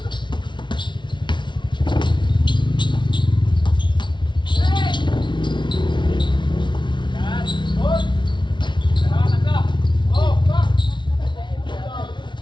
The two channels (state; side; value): late; right; 0.23 ms